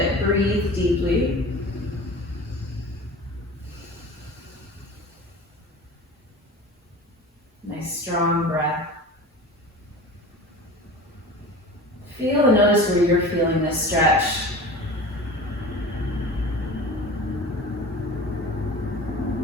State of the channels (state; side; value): normal; both; correlation 0.36